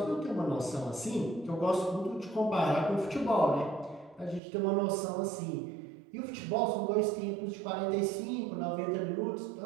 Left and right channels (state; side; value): drops out; left; at 4.4 s